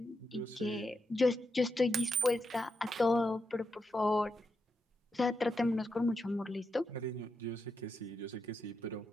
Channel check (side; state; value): both; normal; correlation 0.85